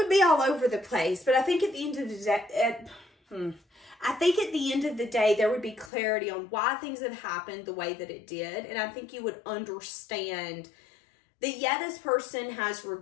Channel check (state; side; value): drops out; right; at 5.9 s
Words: be all over the place. But I think at the end of the day, there would be clarity on why things have happened the way that it did. And I think you would understand that, yeah, this person has